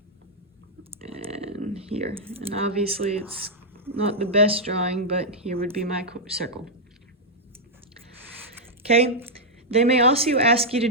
And here. And obviously it's not the best drawing, but here would be my circle. Okay. They may also ask you to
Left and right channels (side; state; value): both; normal; correlation -0.05